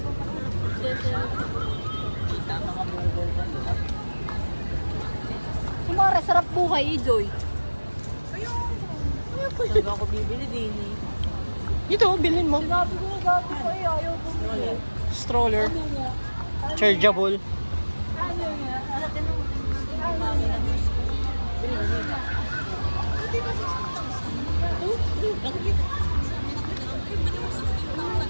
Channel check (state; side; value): inverted; both; correlation -1.00